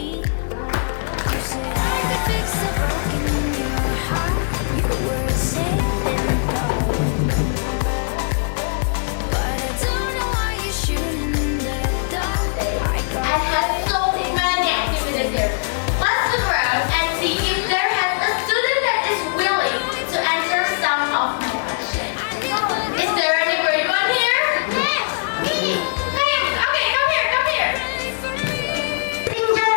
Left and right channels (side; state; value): right; silent; digital silence